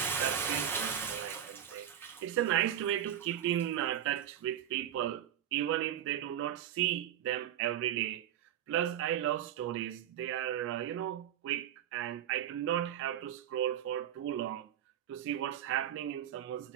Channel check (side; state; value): left; quieter; 10.6 dB